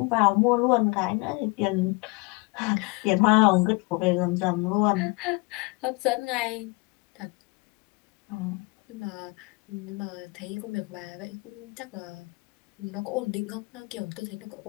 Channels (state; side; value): quieter; right; 27.0 dB